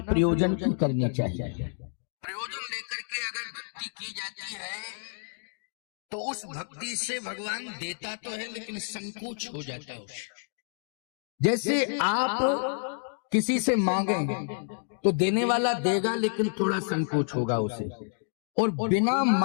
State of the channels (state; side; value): silent; right; digital silence